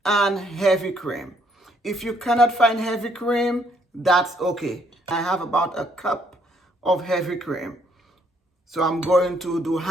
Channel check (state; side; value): normal; both; correlation 0.68